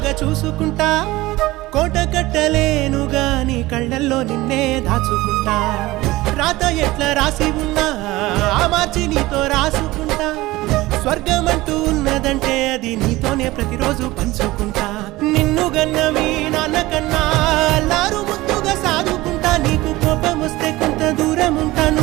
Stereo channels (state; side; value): quieter; left; 19.0 dB